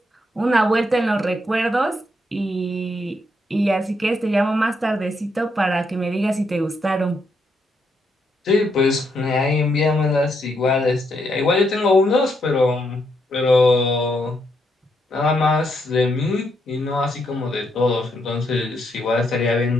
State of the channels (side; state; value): both; normal; correlation 0.77